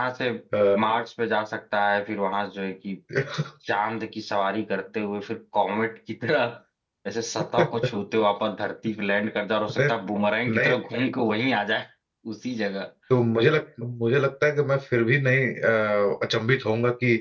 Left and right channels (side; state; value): both; identical; correlation 1.00